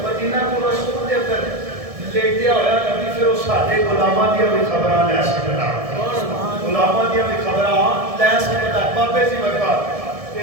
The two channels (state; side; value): late; left; 1.7 ms